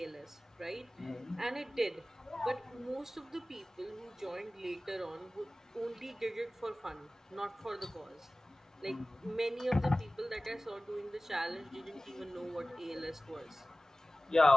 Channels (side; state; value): both; normal; correlation 0.97